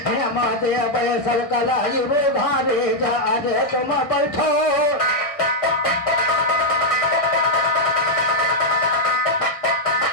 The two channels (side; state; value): right; late; 1.6 ms